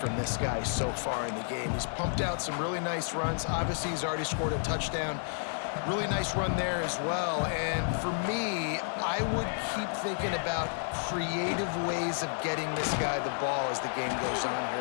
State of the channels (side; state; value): right; silent; digital silence